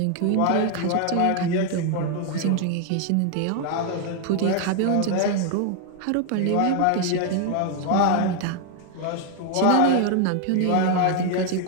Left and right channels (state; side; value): different; both; correlation 0.00